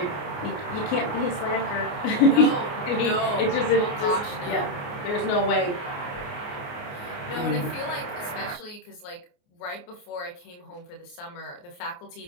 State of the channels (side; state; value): right; late; 28 ms